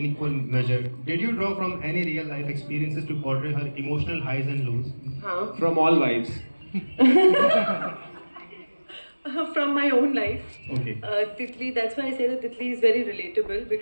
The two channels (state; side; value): inverted; both; correlation -1.00